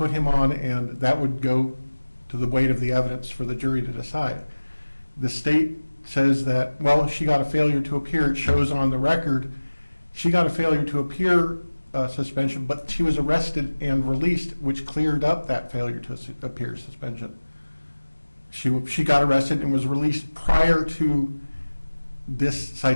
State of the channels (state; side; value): inverted; both; correlation -1.00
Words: him on, and that would go to the weight of the evidence for the jury to decide. The state says that, well, she got a failure to appear. It shows on the record she got a failure to appear suspension, but she was arrested and released, which cleared up that failure to appear suspension. She got arrested and was released prior to this